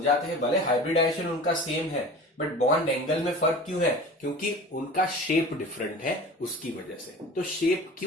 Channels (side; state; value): both; normal; correlation 0.37